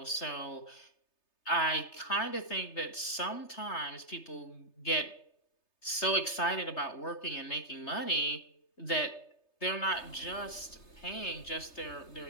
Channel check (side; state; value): right; late; 3.3 ms